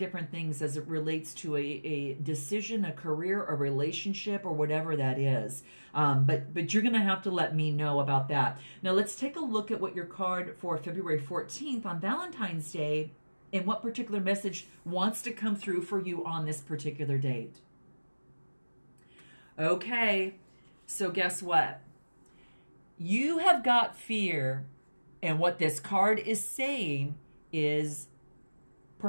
things as it relates to a decision, a career, a relationship, or whatever that is. But you're going to have to let me know about that. Now, let's take a look at what your card for February 14th on Valentine's Day and what particular message wants to come through for you on this particular date. Okay, so guess what? You have got fear, and what this card is saying is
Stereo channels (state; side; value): inverted; both; correlation -1.00